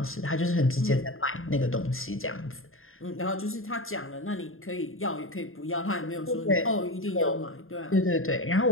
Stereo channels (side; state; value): right; late; 0.60 ms